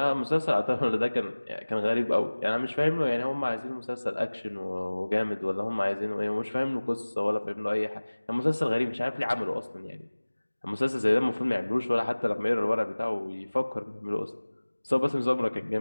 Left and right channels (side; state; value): both; inverted; correlation -1.00